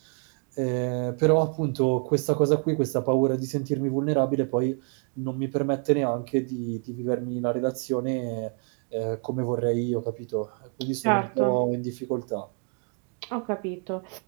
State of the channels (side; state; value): left; quieter; 38.8 dB